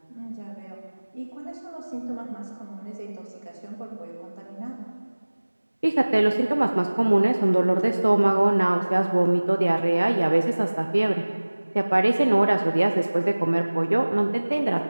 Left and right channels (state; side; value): inverted; both; correlation -1.00